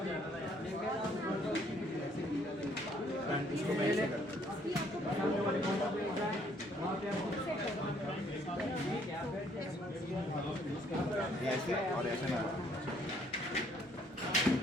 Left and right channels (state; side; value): normal; both; correlation 0.65